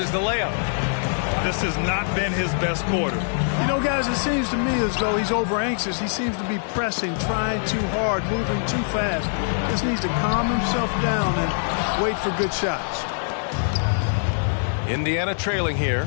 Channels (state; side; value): silent; right; digital silence